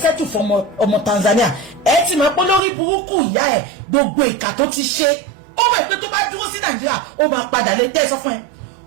settle fún ọmọ Tanzania ẹ ti máa pọ́ lórí burúkú ìyá ẹ̀ gbogbo ìkà tó ti ṣe ó mọ̀ pé tó bá dúró sí Nàìjíríà ó máa padà lè tẹ́ sọ fún ẹ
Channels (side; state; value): left; drops out; at 2.6 s